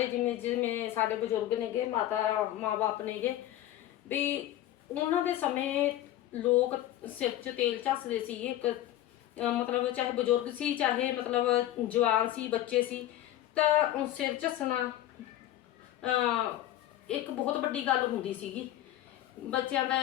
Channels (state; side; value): quieter; right; 13.4 dB